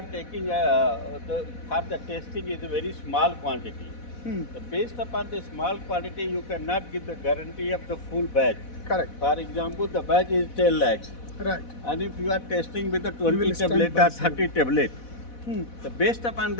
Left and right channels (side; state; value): right; late; 4.1 ms